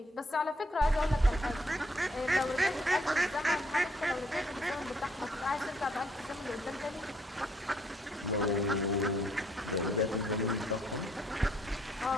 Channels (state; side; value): normal; both; correlation 0.69